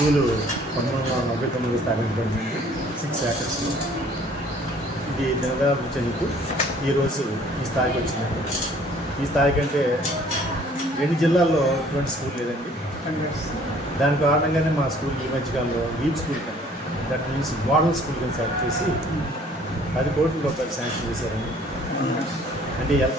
1999 స్థాపించబడింది. 6 acres. ఇది దినదయాభివృద్ధి చెందుతూ ఈరోజు ఈ స్థాయికి వచ్చిందండి. ఈ స్థాయి కంటే 2 జిల్లాల్లో ఇటువంటి స్కూల్ లేదండి. దాని కారణంగానే మా స్కూల్ ఈ మధ్యకాలంలో లీప్ స్కూల్ కానీ, దట్ మీన్స్ మోడల్ స్కూల్ కింద సెలెక్ట్ చేసి 10 కోట్ల రూపాయలు శాంక్షన్ చేశారండి. అంటే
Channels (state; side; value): normal; both; correlation 0.56